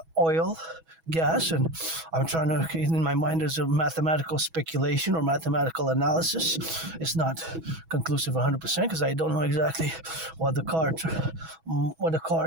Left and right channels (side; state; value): left; late; 6.2 ms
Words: oil, gas, and I'm trying to, in my mind, there's a mathematical speculation or mathematical analysis. It's not conclusive 100% because I don't know exactly what the